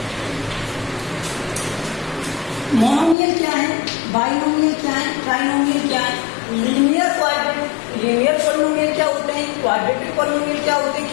Monomial क्या है? बाइनोमियल क्या है? ट्राइनोमियल क्या है? लीनियर पॉलिनोमियल क्या होते हैं? क्वाड्रेटिक पॉलिनोमियल क्या होते हैं?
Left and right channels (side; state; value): right; drops out; at 3.2 s